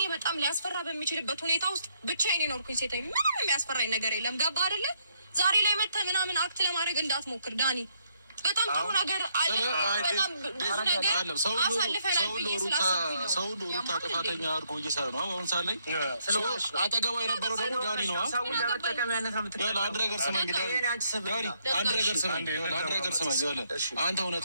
በጣም ሊያስፈራ በሚችልበት ሁኔታ ውስጥ ብቻዬን የኖርኩኝ ሴት ነኝ። ምንም የሚያስፈራኝ ነገር የለም። ገባህ አይደለ? ዛሬ ላይ መተህ ምናምን አክት ለማድረግ እንዳትሞክር ዳኒ። በጣም ጥሩ ነገር አለ። በጣም ብዙ ነገር አሳልፈናል ብዬ ስላሰብኩኝ ነው። ሰው ሩታ ጥፋተኛ አድርጎ እየሰራ ነው። አሁን ሳለ አጠገቧ የነበረው ደግሞ ዳኒ ነው። አንድ ነገር ስማኝ ዳኒ፣ አንድ ነገር ስማኝ። አንተ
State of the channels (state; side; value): inverted; both; correlation -0.73